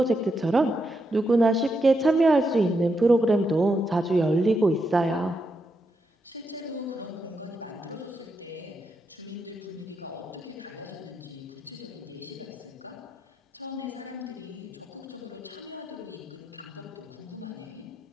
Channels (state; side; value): normal; both; correlation 0.83